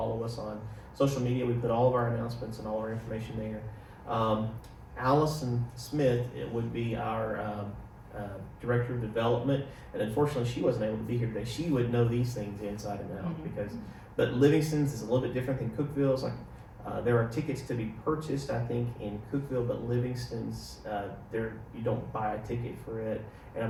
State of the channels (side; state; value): both; identical; correlation 1.00